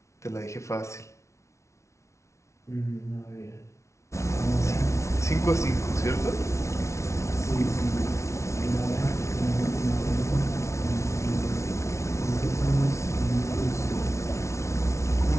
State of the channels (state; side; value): late; right; 0.14 ms